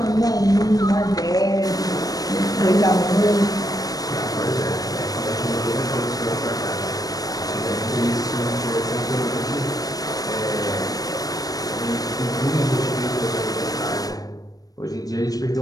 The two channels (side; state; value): right; late; 0.18 ms